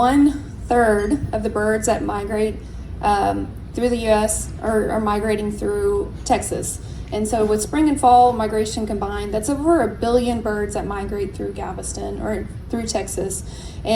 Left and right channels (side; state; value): both; identical; correlation 1.00